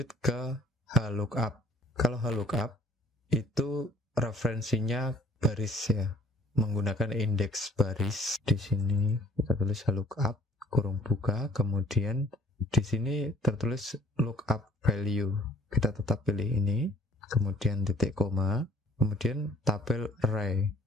ke HLOOKUP. Kalau HLOOKUP itu referensinya baris ya, menggunakan indeks baris. Di sini kita tulis HLOOKUP kurung buka, kemudian di sini tertulis lookup value. Kita tetap pilih ini, kemudian titik koma, kemudian tabel array.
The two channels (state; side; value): normal; both; correlation 0.57